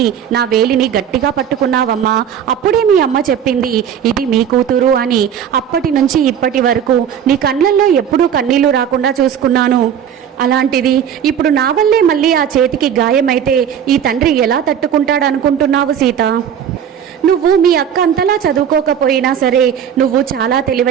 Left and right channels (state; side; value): quieter; left; 8.7 dB